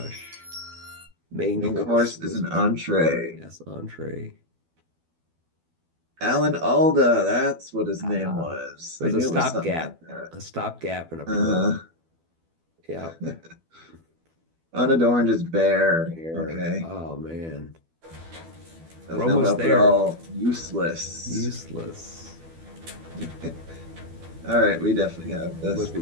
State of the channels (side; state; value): left; late; 12 ms